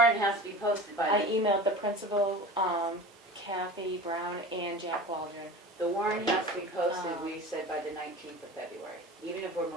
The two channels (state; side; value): normal; both; correlation 0.35